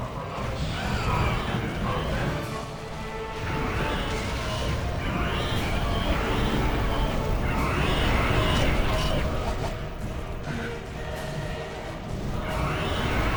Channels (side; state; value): both; identical; correlation 1.00